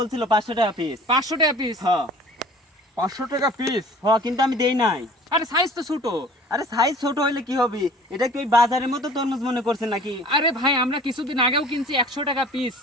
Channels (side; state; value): both; normal; correlation 0.47